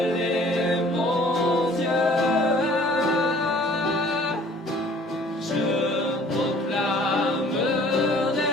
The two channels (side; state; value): both; normal; correlation 0.53